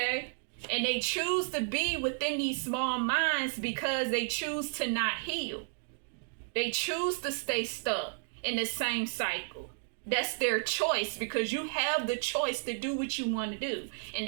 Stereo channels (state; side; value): silent; left; digital silence